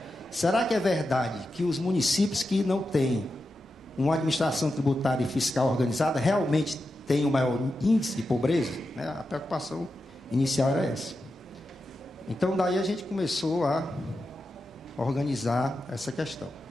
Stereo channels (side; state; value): both; normal; correlation 0.89